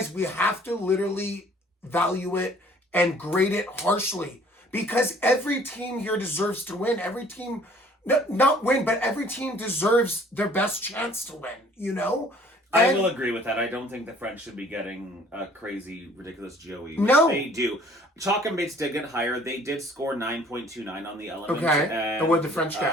we have to literally value it and grade it harshly because every team here deserves to win. Every team, not win, but every team deserves their best chance to win, you know? I will agree with that. I don't think the French should be getting a crazy, ridiculous GOE. No. They do. Chalk and Bates did get higher. They did score 9.29 on the element. Okay. And what did the French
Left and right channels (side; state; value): both; normal; correlation 0.55